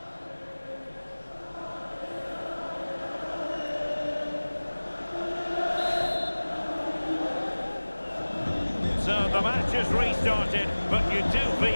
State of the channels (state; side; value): inverted; both; correlation -1.00